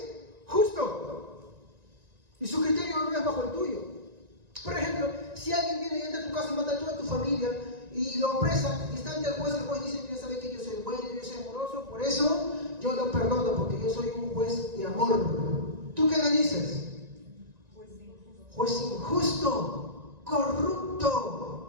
justo. Y su criterio no es bajo el tuyo. Por ejemplo, si alguien viene y entra a tu casa y mata a toda tu familia y lo apresa y está ante el juez dice, mira, sabe que yo soy bueno, yo soy amoroso, por eso yo lo perdono, porque yo soy un juez de amor. ¿Tú qué le dices? Juez injusto, corrupto.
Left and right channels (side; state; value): left; late; 1.9 ms